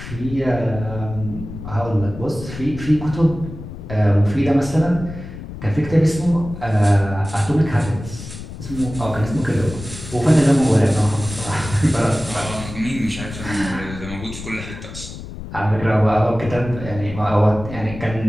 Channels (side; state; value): left; noise; rumble, 11 dB below the sound